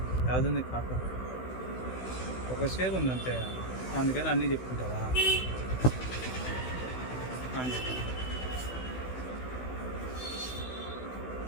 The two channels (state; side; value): late; right; 16 ms